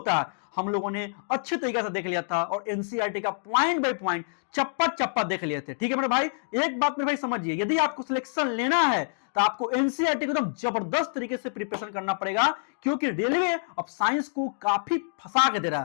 है, हम लोगों ने अच्छे तरीके से देख लिया था और एनसीईआरटी का पॉइंट बाय पॉइंट चप्पा चप्पा देख लिए थे। ठीक है मेरे भाई, एक बात मेरे भाई समझिए, यदि आपको सिलेक्शन लेना है तो आपको एनसीईआरटी को एकदम जबरदस्त तरीके से प्रिपरेशन करना पड़ेगा, क्योंकि रेलवे अब साइंस को काफी फंसा के दे रहा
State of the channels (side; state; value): right; silent; digital silence